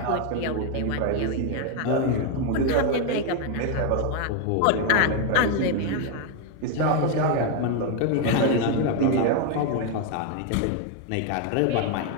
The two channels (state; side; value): different; both; correlation 0.01